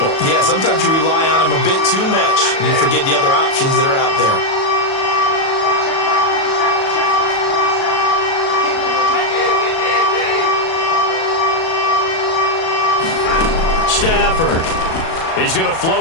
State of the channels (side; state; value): right; late; 37 ms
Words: Yeah, sometimes you rely on him a bit too much, and you forget the other options that are out there. Stafford. He's going to